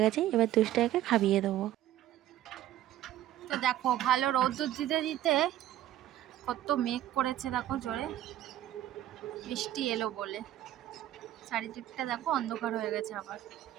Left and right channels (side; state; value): left; quieter; 13.1 dB